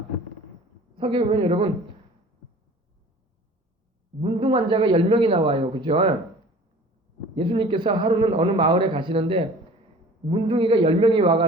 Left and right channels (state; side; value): normal; both; correlation 0.46